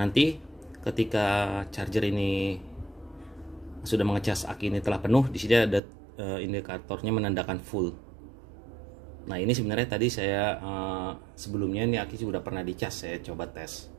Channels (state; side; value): drops out; left; at 5.8 s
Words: ketika charger ini sudah mengecas, aki ini telah penuh, di sini ada indikatornya menandakan full. Nah, ini sebenarnya tadi saya sebelumnya ini aki sudah pernah dicas, saya coba tes.